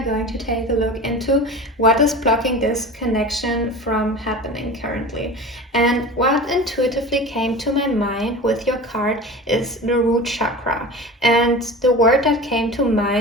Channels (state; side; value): normal; both; correlation 0.34